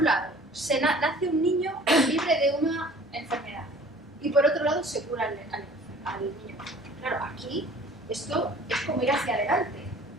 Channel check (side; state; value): both; normal; correlation 0.49